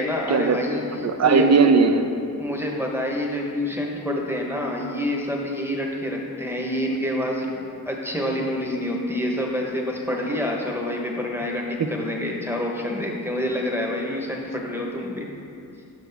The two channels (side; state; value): both; normal; correlation 0.25